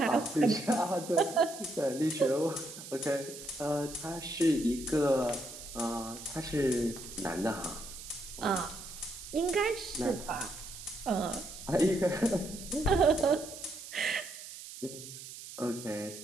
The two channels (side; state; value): right; noise; hiss, 12 dB below the sound